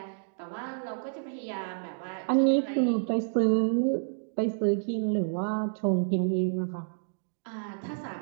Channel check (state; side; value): silent; left; digital silence